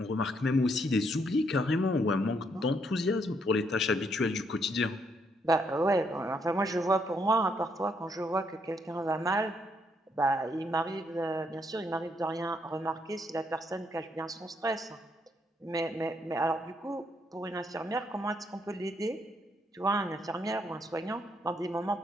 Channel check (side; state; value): both; normal; correlation 0.73